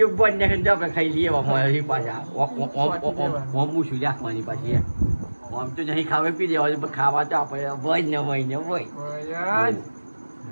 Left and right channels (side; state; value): both; inverted; correlation -1.00